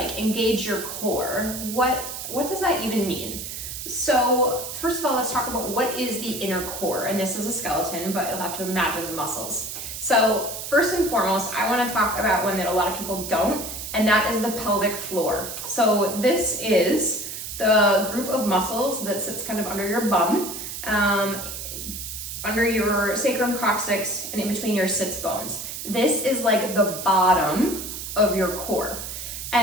engage your core, what does that even mean? So first of all, let's talk about what is the inner core, and this is a skeleton, but you'll have to imagine the muscles. So first and foremost, I want to talk about one that a lot of people don't, and that is the pelvic floor. So this is the group of muscles that sits kind of under your bum, under your sacrum coccyx, and in between your sits bones. This is like the bottom of your core.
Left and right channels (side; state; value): right; noise; hiss, 7 dB below the sound